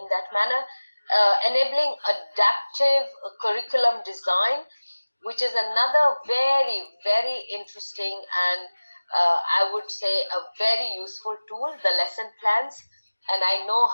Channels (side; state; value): both; inverted; correlation -1.00